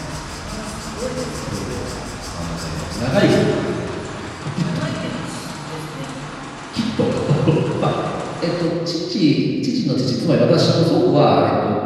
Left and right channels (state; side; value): identical; both; correlation 1.00